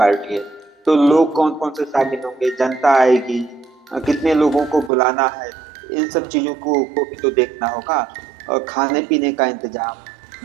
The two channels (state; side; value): drops out; left; at 4.9 s